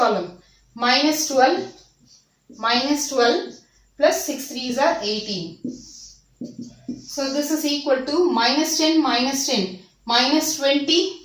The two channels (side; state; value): both; identical; correlation 1.00